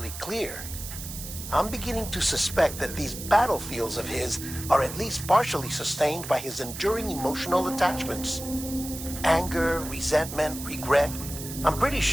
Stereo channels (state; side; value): noise; right; hiss, 10 dB below the sound